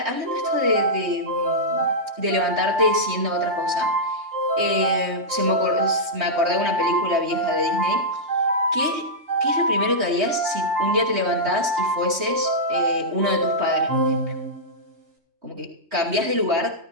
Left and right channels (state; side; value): late; left; 3.2 ms